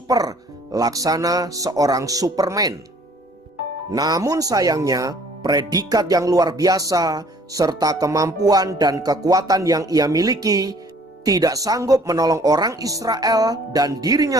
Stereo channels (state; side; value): normal; both; correlation 0.56